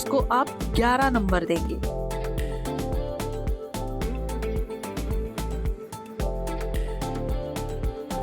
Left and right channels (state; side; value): identical; both; correlation 1.00